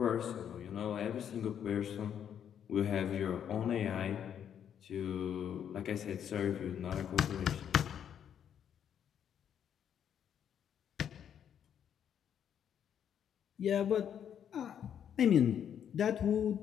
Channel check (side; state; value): right; quieter; 8.9 dB